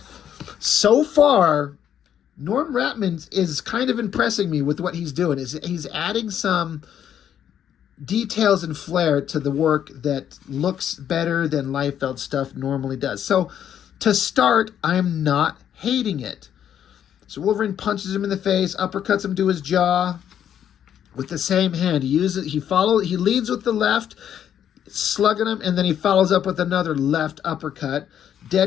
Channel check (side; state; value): right; quieter; 9.6 dB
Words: So far, Norm Ratman is kind of impressing me with what he's doing. He's adding some details and flair to the work that looks better than Liefeld stuff normally does. So, to start, I'm not hating it. So Wolverine punches him in the face, uppercuts him to his jaw with the same hand. He leads with the left, slugging him, and then he follows up with another left uppercut.